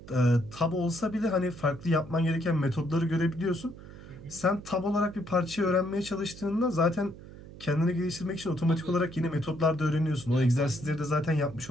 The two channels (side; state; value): right; noise; hum, 16 dB below the sound